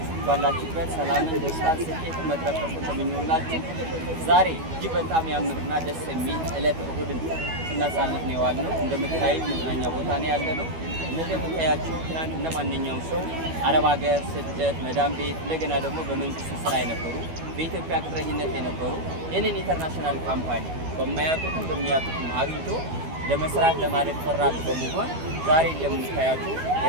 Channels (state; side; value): late; left; 12 ms